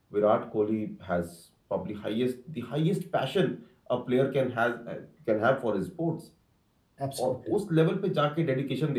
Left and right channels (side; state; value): both; identical; correlation 1.00